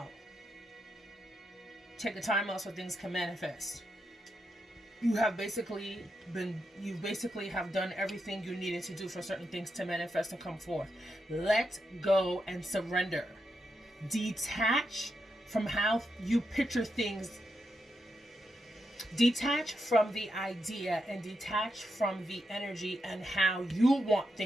Take a time out so things can manifest. You basically have done everything you needed to do for certain things to manifest and come forth. Let go and surrender. Detach from how you picture things. Detach from the idea and detach from the energy and how you want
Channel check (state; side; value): normal; both; correlation 0.84